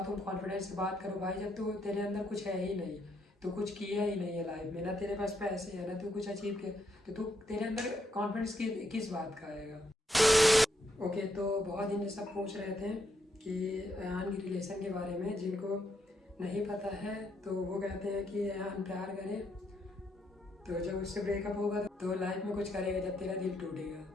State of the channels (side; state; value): both; normal; correlation 0.77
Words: तुम कॉन्फिडेंस से बात करो भाई, जब तो तेरे अंदर कुछ है ही नहीं, तो कुछ किया ही नहीं है लाइफ में, ना तेरे पास पैसे है ना तू कुछ अचीव किया, तो तू तेरे अंदर कॉन्फिडेंस किस बात का आएगा। ओके, तो बहुत दिन सब पूछ रहे थे कि अयान की रिलेशन के बारे में, जिनको नहीं पता है तो वो कहते हैं कि अयान प्यार करे तो जब उससे ब्रेकअप होगा तो लाइफ में कुछ करेगा जब तेरा दिल